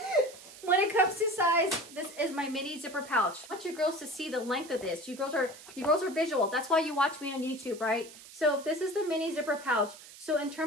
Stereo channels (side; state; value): right; noise; hiss, 18 dB below the sound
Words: When it comes to size, this is my mini zipper pouch. I want you girls to see the length of this. You girls are visual. That's why you watch me on YouTube, right? So if this is the mini zipper pouch, so in